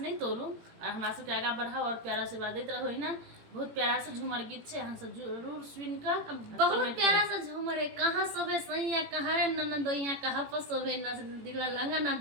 तोड़ू और हमरा सबके आगा बढ़ाओ और प्यारा आशीर्वाद देते रहो ही ना। बहुत प्यारा सा झूमर गीत छे, अहाँ सब जरूर सुन कर बहुत प्यारा सा झूमर है। कहाँ सोबे सैया कहाँ रे ननदोइया, कहाँ पर सोबे न दिला लंगा ना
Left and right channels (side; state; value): left; late; 18 ms